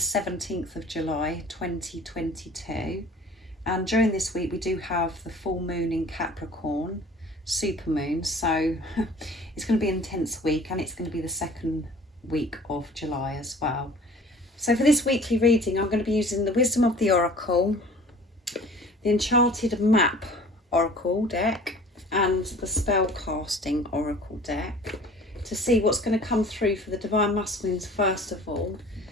of July 2022. And during this week we do have the full moon in Capricorn, supermoon, so it's going to be an intense week, and it's going to be the second week of July as well. So for this weekly reading I'm going to be using the Wisdom of the Oracle, the Enchanted Map Oracle deck, and the Spellcasting Oracle deck to see what's going to come through for the Divine Masculines first of all,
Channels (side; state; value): both; normal; correlation 0.47